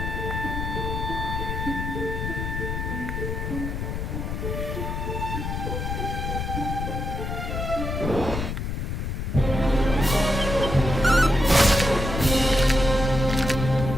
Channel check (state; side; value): noise; left; rumble, 3 dB below the sound